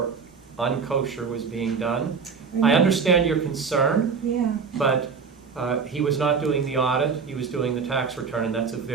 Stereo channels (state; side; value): quieter; left; 5.7 dB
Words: unkosher was being done. I understand your concern, Yeah. but he was not doing the audit, he was doing the tax return, and that's a